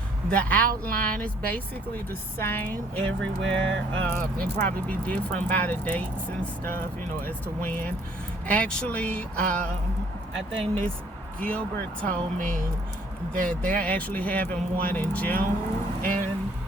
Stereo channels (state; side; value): normal; both; correlation 0.61